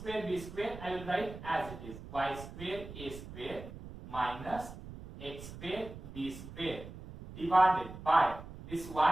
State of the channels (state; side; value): noise; right; rumble, 13 dB below the sound